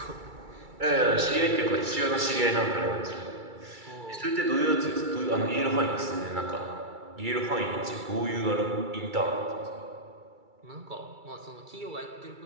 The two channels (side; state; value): left; late; 2.3 ms